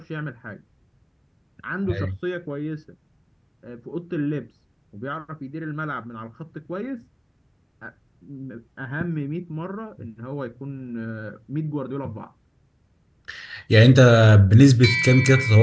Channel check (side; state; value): both; identical; correlation 1.00